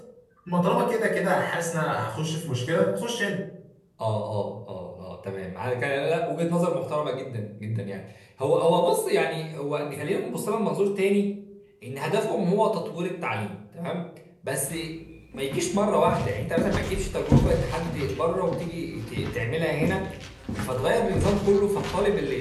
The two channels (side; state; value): both; identical; correlation 1.00